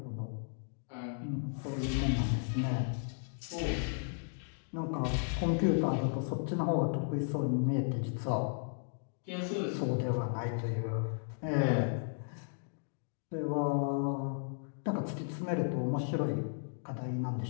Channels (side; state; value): right; silent; digital silence